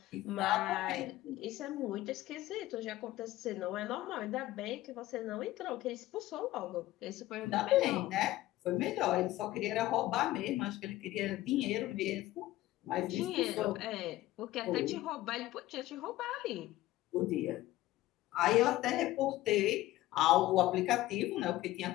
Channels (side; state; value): right; quieter; 16.1 dB